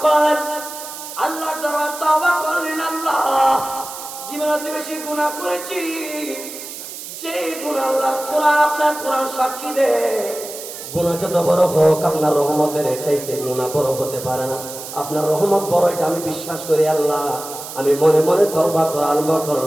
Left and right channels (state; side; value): noise; right; hiss, 11 dB below the sound